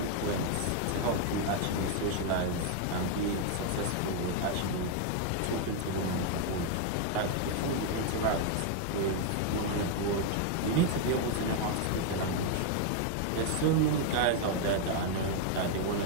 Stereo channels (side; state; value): both; different; correlation 0.00